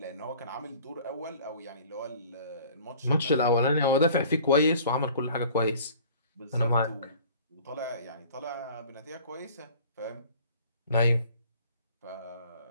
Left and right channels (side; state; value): both; inverted; correlation -0.49